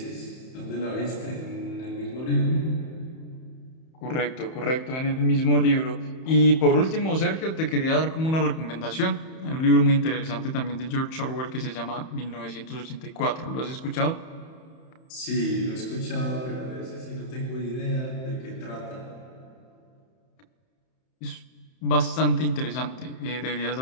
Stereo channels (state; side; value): late; right; 31 ms